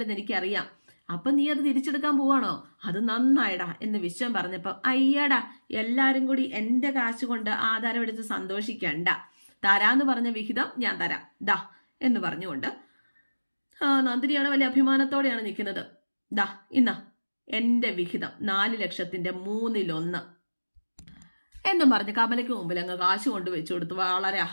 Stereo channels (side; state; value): both; inverted; correlation -1.00